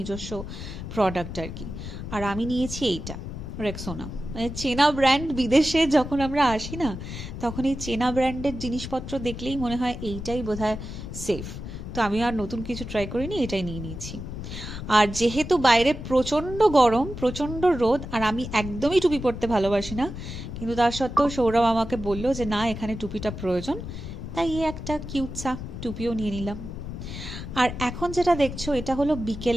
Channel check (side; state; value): left; noise; rumble, 8 dB below the sound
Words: প্রোডাক্ট আর কি। আর আমি নিয়েছি এইটা, রেক্সোনা। মানে চেনা ব্র্যান্ড, বিদেশে যখন আমরা আসি না, তখন এই চেনা ব্র্যান্ডের জিনিসপত্র দেখলেই মনে হয় এইটাই বোধহয় সেফ। তো আমি আর নতুন কিছু ট্রাই করিনি, এটাই নিয়ে নিয়েছি। আর যেহেতু বাইরে প্রচণ্ড গরম, প্রচণ্ড রোদ, আর আমি একদমই টুপি পরতে ভালোবাসি না, কিন্তু তার সত্ত্বেও সৌরভ আমাকে বললো যে না, এখানে টুপিটা প্রয়োজন, তাই এই একটা কিউটসা টুপিও নিয়ে নিলাম। আর এখন যেটা দেখছো, এটা হলো